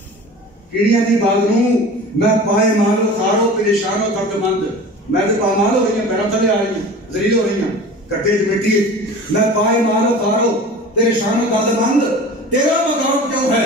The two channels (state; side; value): normal; both; correlation 0.38